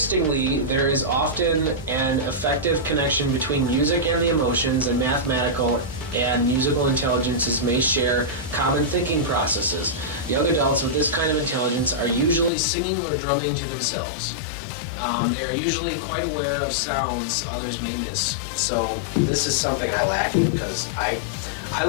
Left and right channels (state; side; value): drops out; right; at 12.5 s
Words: there is often an effective connection between music and the emotions, and mathematical and musical intelligences may share common thinking processes. Young adults with this kind of intelligence are usually singing or drumming to themselves. They are usually quite aware of sounds others may miss. So this is something I lack in, because I